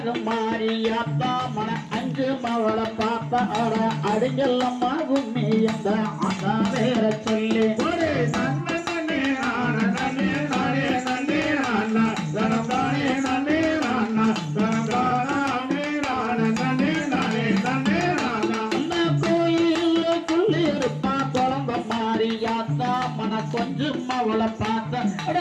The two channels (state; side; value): identical; both; correlation 1.00